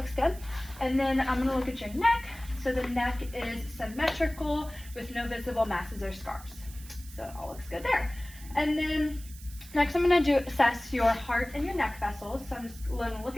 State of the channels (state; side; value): noise; right; hiss, 18 dB below the sound